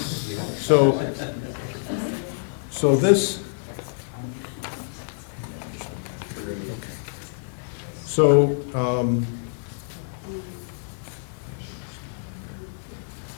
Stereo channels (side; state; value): right; silent; digital silence